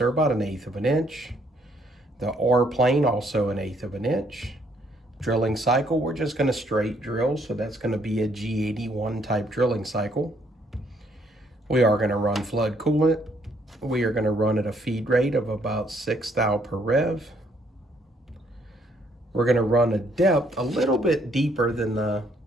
about 1/8 of an inch. The R plane, also 1/8 of an inch. Drilling cycle, we're just going to straight drill, so that's going to be a G81 type drilling cycle. We are going to run flood coolant. We are going to run at a feed rate of about 6 thou per rev. We're going to run a depth a little bit deeper than the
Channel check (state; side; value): normal; both; correlation 0.68